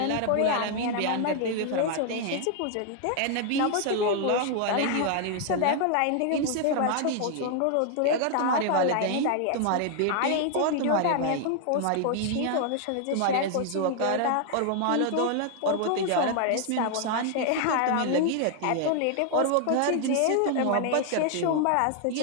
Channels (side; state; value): both; different; correlation 0.00